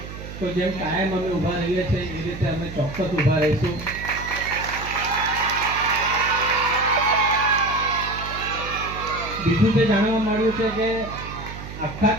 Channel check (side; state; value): right; noise; hum, 11 dB below the sound